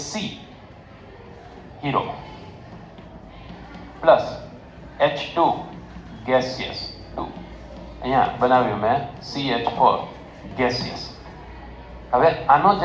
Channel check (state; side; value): identical; both; correlation 1.00